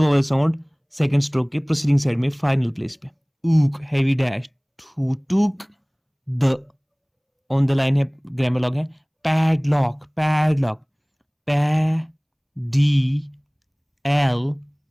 sound second stroke के प्रोसीडिंग साइड में फाइनल प्लेस पे, ऊक, heavy dash. Who took the, on the line है, ग्रामर लॉग है। पैडलॉक, पैडलॉक, पै, डी, एल,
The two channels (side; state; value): both; identical; correlation 1.00